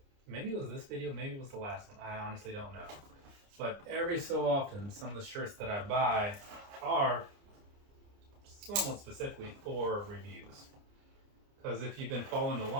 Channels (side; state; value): left; late; 29 ms